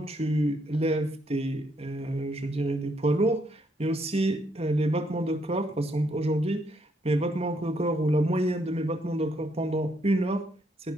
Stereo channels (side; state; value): both; normal; correlation 0.73